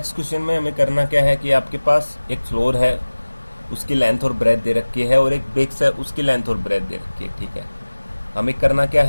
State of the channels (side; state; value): both; inverted; correlation -1.00